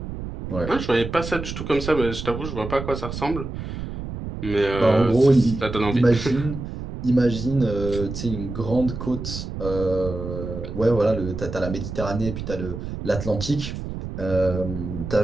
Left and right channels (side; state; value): right; noise; rumble, 7 dB below the sound